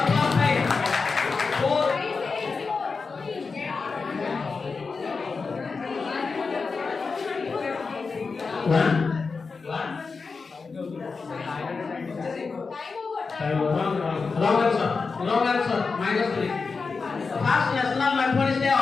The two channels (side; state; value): right; quieter; 4.7 dB